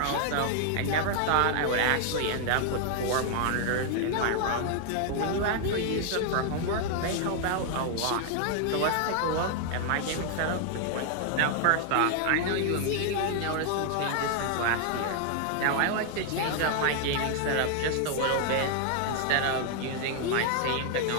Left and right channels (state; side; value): different; both; correlation 0.00